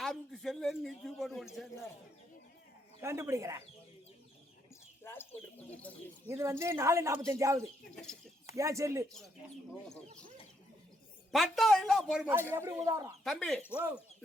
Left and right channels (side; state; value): both; normal; correlation 0.74